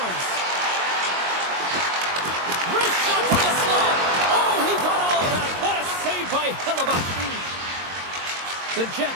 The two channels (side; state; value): left; late; 22 ms